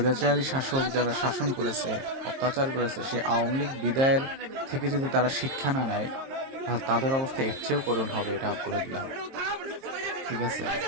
শাসক যারা শাসন করেছে, অত্যাচার করেছে, সেই আওয়ামী লীগ বিদায়ের থেকে যদি তারা শিক্ষা না নেয়, তাহলে তাদের অবস্থা এর চেয়েও করুণ হবে, এটা বলে দিলাম। ঠিক আছে,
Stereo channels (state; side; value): late; left; 22 ms